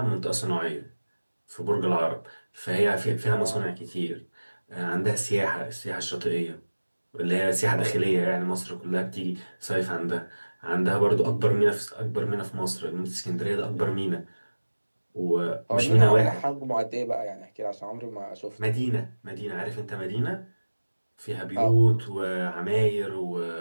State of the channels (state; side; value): inverted; both; correlation -1.00